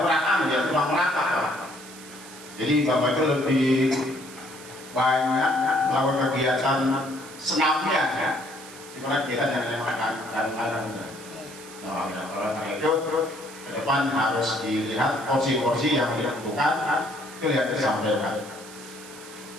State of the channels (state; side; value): noise; right; hiss, 17 dB below the sound